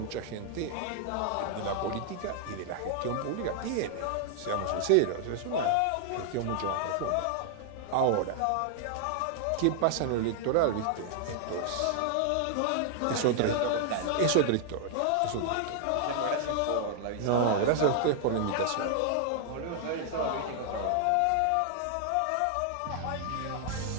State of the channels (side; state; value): both; different; correlation 0.00